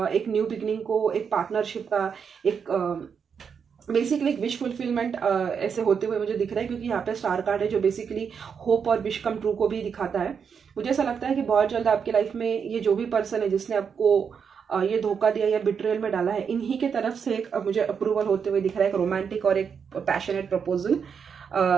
एक न्यू बिगनिंग को, एक पार्टनरशिप का, एक बेसिकली एक विश फुलफिलमेंट ऐसे होते हुए मुझे दिख रहा है। क्योंकि यहाँ पे स्टार कार्ड है जो बेसिकली होप और विश कम ट्रू को भी दिखाता है। मुझे ऐसा लगता है कि बहुत जल्द आपकी लाइफ में ये जो भी पर्सन है जिसने आपको ये धोखा दिया या बिट्रेयल में डाला है, इन्हीं के तरफ से एक मुझे अप्रूवल होते हुए दिख रहा है, एक रोमांटिक और एक passionate proposal.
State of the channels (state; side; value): quieter; left; 6.7 dB